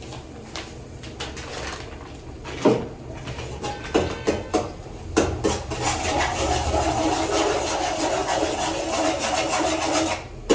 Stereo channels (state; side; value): identical; both; correlation 1.00